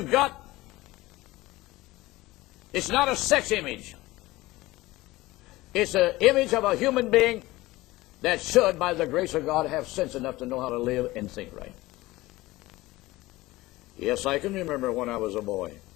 got, it's not a sex image. It's an image of a human being that should, by the grace of God, have sense enough to know how to live and think right. Yes, I can remember when I was a boy.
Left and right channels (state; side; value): quieter; right; 18.9 dB